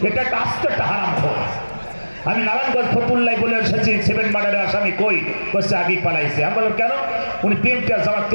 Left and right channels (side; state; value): both; inverted; correlation -1.00